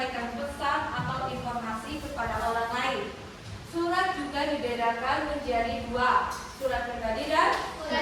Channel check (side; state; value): both; identical; correlation 1.00